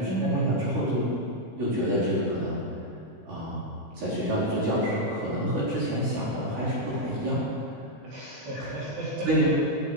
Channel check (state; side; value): late; left; 16 ms